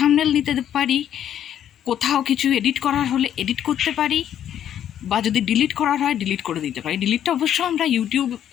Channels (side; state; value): right; quieter; 10.2 dB